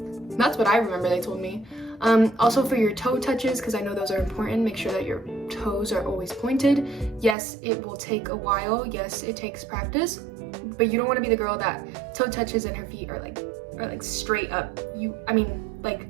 I remember they told me. Also for your toe touches, because I know those are important, make sure that your toes are always pointed. Yes, it will take a while. Yes, it takes practice, but you don't want to be the girl that toe touches and her feet are like straight up.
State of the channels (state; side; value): drops out; left; at 7.4 s